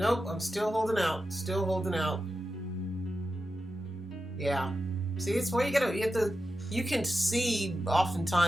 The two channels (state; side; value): normal; both; correlation 0.90